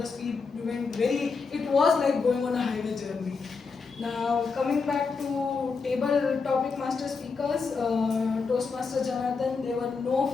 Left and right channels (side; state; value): right; quieter; 4.8 dB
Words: speed went it was like going on a highway journey. Now, coming back to table topic master speakers, Toastmaster Janardhan, there were no